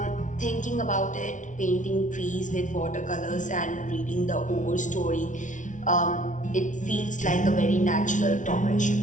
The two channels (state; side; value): late; right; 0.37 ms